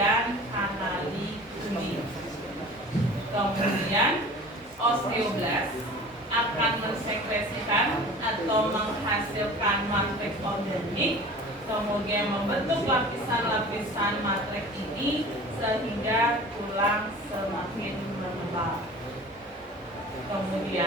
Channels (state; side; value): normal; both; correlation 0.41